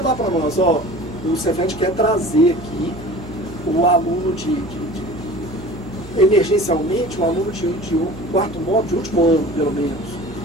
lá para nós, o Cefet quer trazer aqui o aluno emergencialmente, um aluno de quarto módulo, de último ano, pelo menos.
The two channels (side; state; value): right; noise; hum, 16 dB below the sound